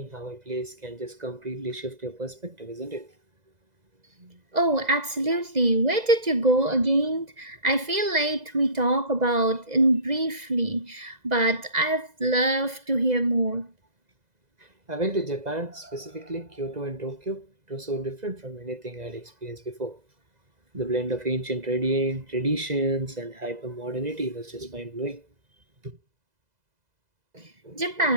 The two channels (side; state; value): left; late; 2.0 ms